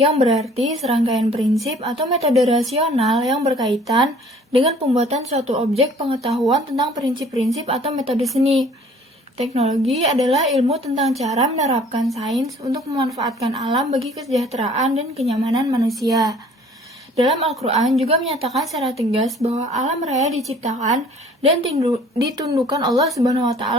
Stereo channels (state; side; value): normal; both; correlation 0.53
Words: berarti serangkaian prinsip atau metode rasional yang berkaitan dengan pembuatan suatu objek pengetahuan tentang prinsip-prinsip atau metode seni. Teknologi adalah ilmu tentang cara menerapkan sains untuk memanfaatkan alam bagi kesejahteraan dan kenyamanan manusia. Dalam Al-Quran juga menyatakan secara tegas bahwa alam raya diciptakan dan ditundukkan Allah Subhanahu wa